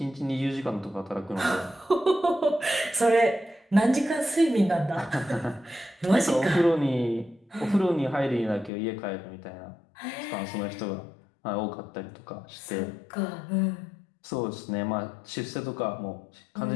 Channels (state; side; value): drops out; right; at 8.7 s